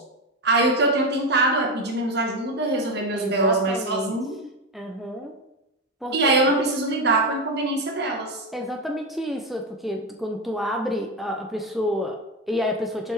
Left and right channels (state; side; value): normal; both; correlation 0.13